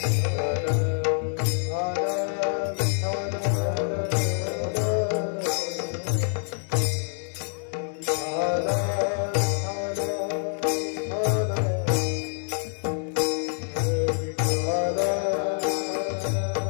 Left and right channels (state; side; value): silent; right; 57 dB below the other